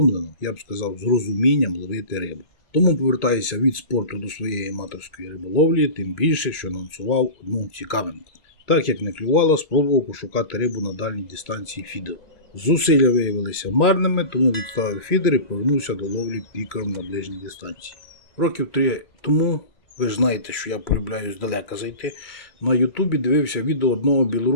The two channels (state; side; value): late; right; 2.3 ms